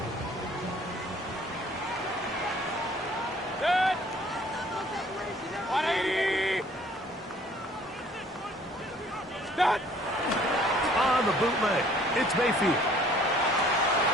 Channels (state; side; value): normal; both; correlation 0.56